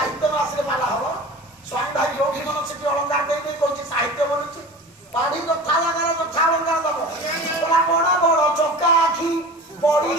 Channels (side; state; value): both; normal; correlation 0.36